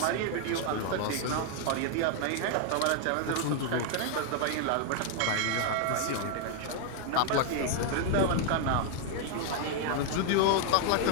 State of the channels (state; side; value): different; both; correlation 0.00